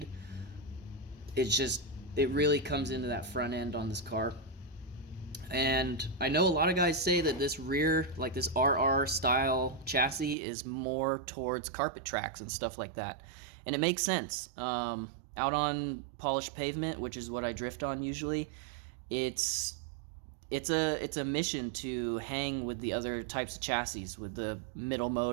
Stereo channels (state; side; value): drops out; left; at 10.4 s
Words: It really comes into that front end on this car. And I know a lot of guys say that this rear, like this RR style chassis, is more towards carpet tracks and stuff like that. And it makes sense. Out on polished pavement, which is what I drift on usually, it's a mission to hang with the other types of chassis, with the middle